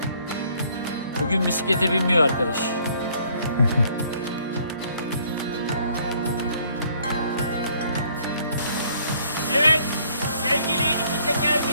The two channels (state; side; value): inverted; both; correlation -0.62